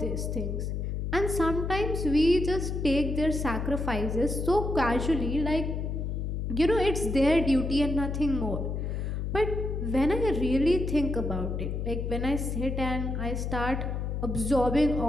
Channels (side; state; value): left; noise; hum, 2 dB below the sound